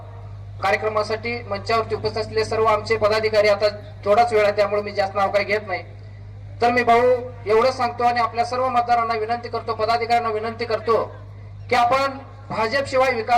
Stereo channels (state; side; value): identical; both; correlation 1.00